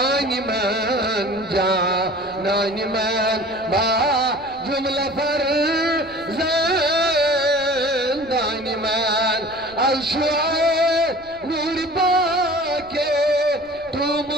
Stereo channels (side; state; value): right; noise; rumble, 25 dB below the sound